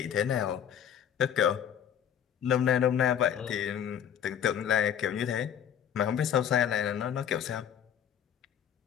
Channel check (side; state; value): right; quieter; 9.1 dB